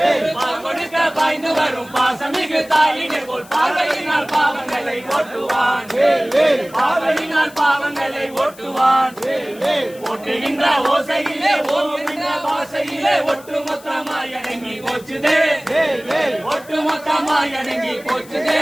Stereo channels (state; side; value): noise; left; hiss, 22 dB below the sound